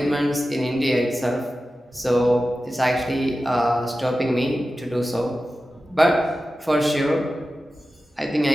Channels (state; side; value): normal; both; correlation 0.94